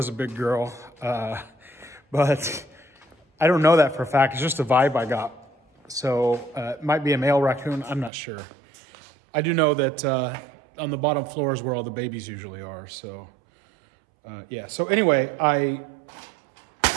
a big girl, but I don't know that for a fact. It's just a vibe I got. So it might be a male raccoon, I'm not sure. I do know that on the bottom floor is where all the babies usually are. So yeah, so anyway, I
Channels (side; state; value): left; drops out; at 8.1 s